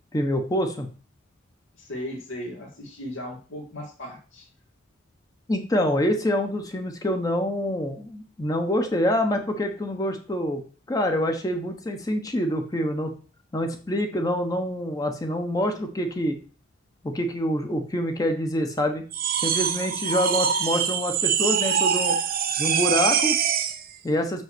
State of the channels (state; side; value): normal; both; correlation 0.38